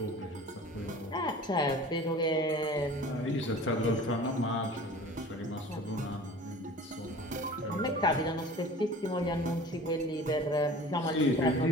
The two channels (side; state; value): both; normal; correlation 0.42